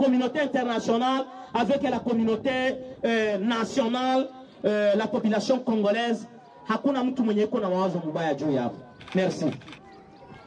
internationale avec la communauté nationale, la population congolaise, hakuna mtu mwenye iko na mawazo mbaya juu yapo. Merci.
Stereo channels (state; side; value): identical; both; correlation 1.00